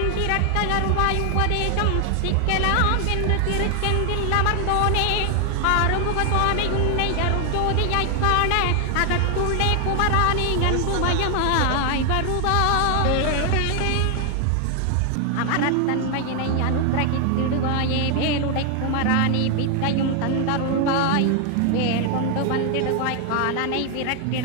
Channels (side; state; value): both; different; correlation 0.00